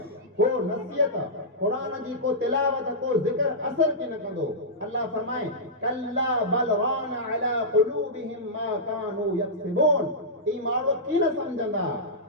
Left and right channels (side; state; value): both; normal; correlation -0.13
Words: को नसीहत, कुरान जी को तिलावत, को ज़िक्र असर के न कंदो। अल्लाह फरमाए, कल्ला बल रान अला क़ुलूबिहिम मा कानू यक्सिबून। ई माण्हू की न समझंदा,